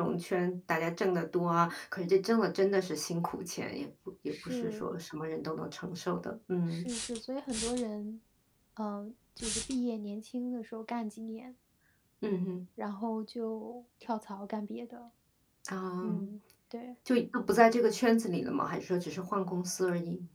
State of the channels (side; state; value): both; identical; correlation 1.00